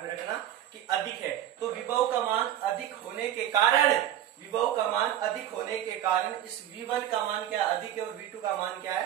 रखना कि अधिक है। तो विभव का मान अधिक होने के कारण, विभव का मान अधिक होने के कारण इस V1 का मान क्या अधिक है और V2 का मान क्या है,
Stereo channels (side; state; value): left; quieter; 11.6 dB